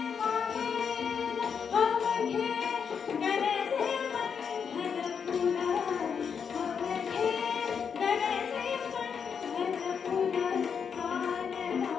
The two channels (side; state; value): right; quieter; 6.7 dB